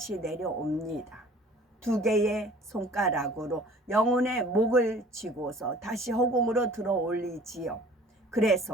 내려옵니다. 두 개의 손가락으로 영혼의 목을 쥐고서 다시 허공으로 들어 올리지요.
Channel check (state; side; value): normal; both; correlation 0.49